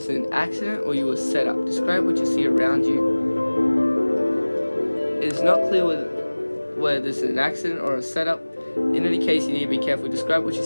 is an accident or you were set up. Describe what you see around you. It's not clear whether this is an accident or a setup. In any case, you need to be careful. Describe what you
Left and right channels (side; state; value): both; inverted; correlation -1.00